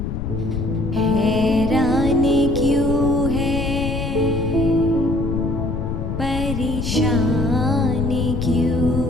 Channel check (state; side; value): noise; left; rumble, 3 dB below the sound